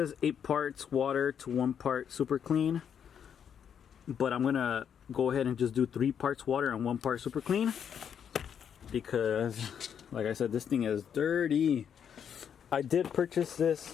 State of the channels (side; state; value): right; quieter; 8.1 dB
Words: 8 parts water to 1 part super clean, but I'm gonna go ahead and just do 3 parts water and 1 part super clean because, like I said, this thing is dirty. I did purchase